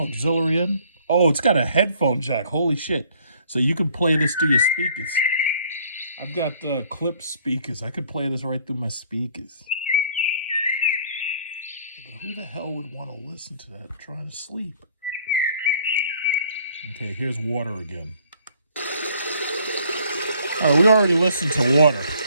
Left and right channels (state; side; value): inverted; both; correlation -0.58